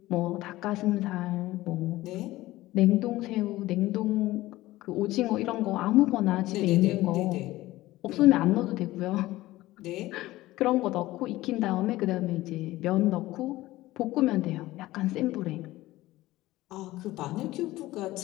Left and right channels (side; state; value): right; quieter; 17.3 dB